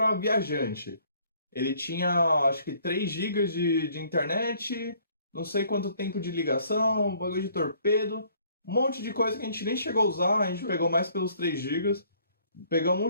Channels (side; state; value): both; inverted; correlation -0.61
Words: viajante. Ele tinha, acho que 3 GB de internet, não sei quanto tempo de ligação, bagulho de torpedo, um monte de coisa que a gente nem chegou a usar, a gente pegou mais pelos 3 GB. Pegamos um